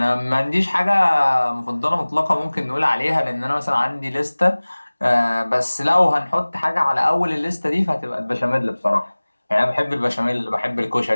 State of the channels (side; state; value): both; inverted; correlation -1.00